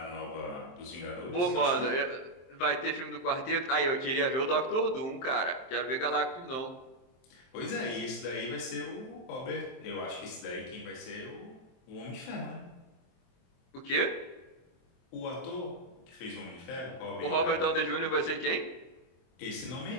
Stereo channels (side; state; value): right; late; 23 ms